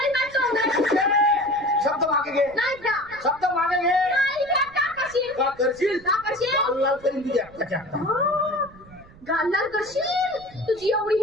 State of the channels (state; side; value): noise; right; rumble, 23 dB below the sound